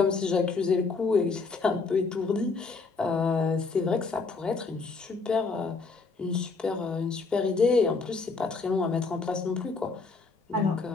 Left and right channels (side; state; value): right; quieter; 4.3 dB